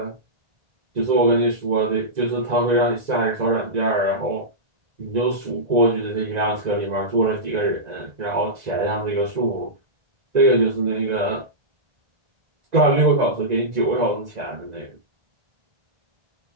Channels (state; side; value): late; left; 1.9 ms